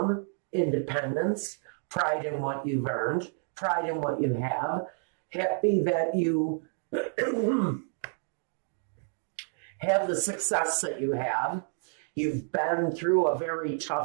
independence, pride in what you've earned, pride in what you have, happy that you have the success that you have. You've been through a very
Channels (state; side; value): silent; left; 58 dB below the other